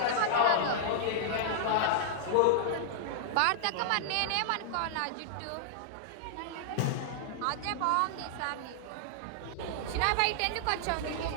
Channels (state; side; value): different; both; correlation -0.01